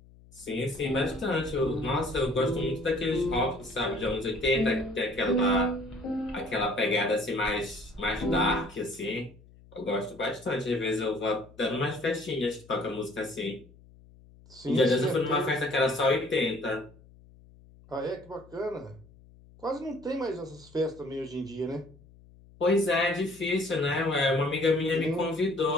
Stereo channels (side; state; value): left; noise; hum, 24 dB below the sound